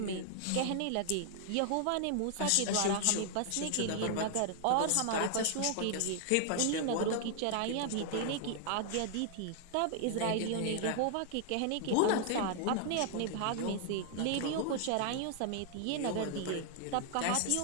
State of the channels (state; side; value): different; both; correlation -0.01